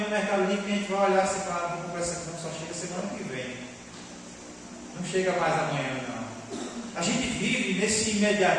Mercado Livre que a gente vai olhar assim, claro, vou comprar essa aqui, não, só chega semana que vem. Não chega mais amanhã não. A gente vive nesse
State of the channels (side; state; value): both; identical; correlation 1.00